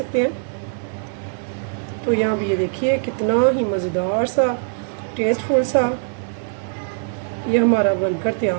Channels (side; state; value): left; silent; digital silence